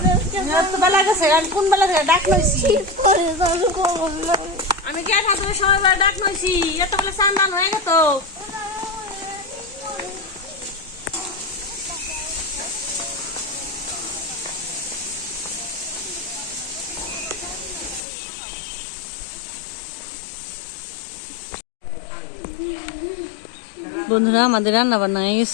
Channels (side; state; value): right; drops out; at 18.1 s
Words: তো বেলা গেছে, আমি কোন বেলা থেকে ডাক লইছি। শীত করে আমি কে থাকবে সময় বেলা ডাক লইছি, এত বেলা স্নান দান হয়ে গেত। বন্ধুরা আমাদের রান্না বান্না হয়ে